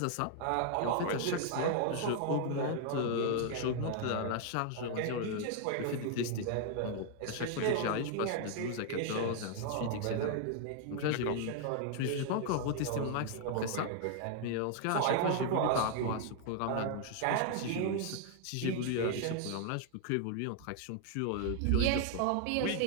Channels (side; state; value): both; different; correlation 0.00